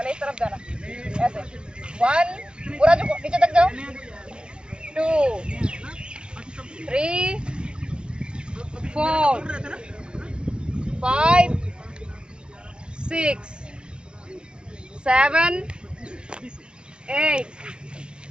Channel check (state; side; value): late; left; 0.051 ms